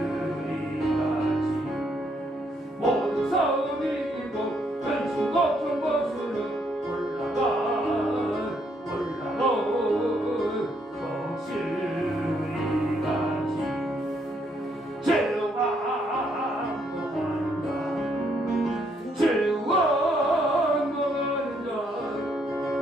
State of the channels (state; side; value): normal; both; correlation 0.72